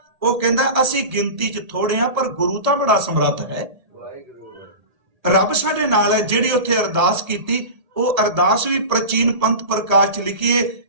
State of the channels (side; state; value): left; late; 1.8 ms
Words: वो कहंदा असी गिनती च थोड़े हां पर गुरु तां बड़ा समर्थ है, रब साडे नाल है। जिहड़ी उत्थे अरदास कीती, वो अरदास भी प्राचीन पंथ प्रकाश च लिखी है।